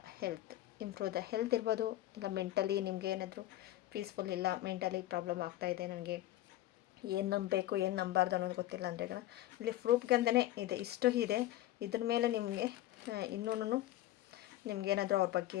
ದ ಹೆಲ್ತ್ ಇರ್ಬೋದು. ಇಲ್ಲ ಮೆಂಟಲಿ ನಿಮಗೆ ಏನಾದರೂ ಪೀಸ್ಫುಲ್ ಇಲ್ಲ, ಮೆಂಟಲಿ ಪ್ರಾಬ್ಲಮ್ ಆಗ್ತಾಯಿದೆ, ನನಗೆ ಏನು ನಂಬಬೇಕು ಏನು ನಂಬಾರ್ದು ಅನ್ನೋದು ಗೊತ್ತಿಲ್ಲ ಅಂದರೆ ಇಲ್ಲಿ ಪ್ರೂಫ್ಗಂತಲೇ ಇದೆ, ಇಷ್ಟು ಇದೆ. ಇದ್ರ ಮೇಲೆ ನಿಮಗೆ ಇನ್ನೂ ನಿಮಗೇನಾದರೂ ಅವ್ರ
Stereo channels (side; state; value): right; quieter; 14.8 dB